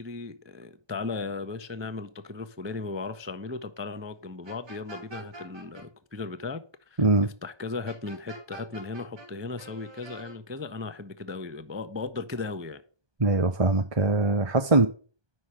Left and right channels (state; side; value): late; left; 1.2 ms